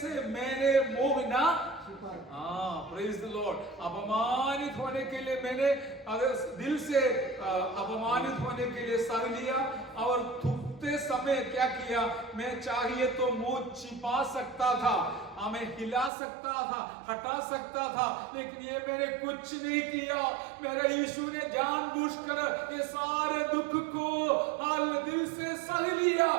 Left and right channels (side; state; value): left; drops out; at 16.1 s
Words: मैंने मुंह ना, प्रेज द लॉर्ड। अपमानित होने के लिए मैंने दिल से अपमानित होने के लिए सह लिया, और थूकते समय क्या किया, मैं चाहिए तो मुंह छिपा सकता था, हमें हिला सकता था, हटा सकता था, लेकिन ये मैंने कुछ नहीं किया। मेरे यीशु ने जानबूझकर ये सारे दुख को दिल से सह लिया,